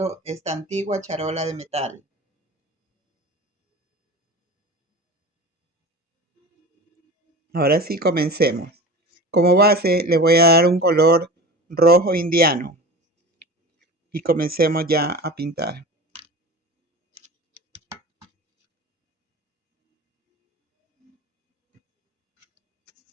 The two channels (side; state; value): both; normal; correlation 0.34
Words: esta antigua charola de metal. Ahora sí, comencemos. Como base le voy a dar un color rojo indiano y comencemos ya a pintar.